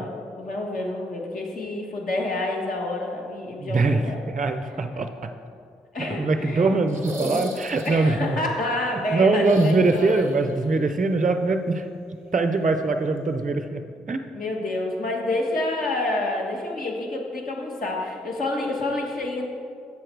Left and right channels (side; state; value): both; normal; correlation 0.72